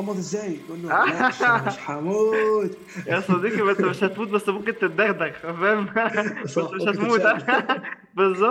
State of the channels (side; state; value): both; identical; correlation 1.00